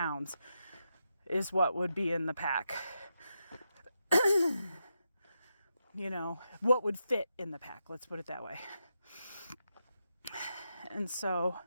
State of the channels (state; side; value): inverted; both; correlation -0.85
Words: is what would be in the pack. You know, what would fit in the pack, let's put it that way. And so,